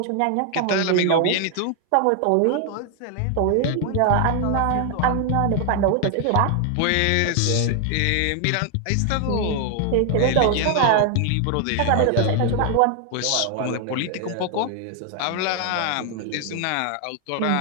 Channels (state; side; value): different; both; correlation 0.00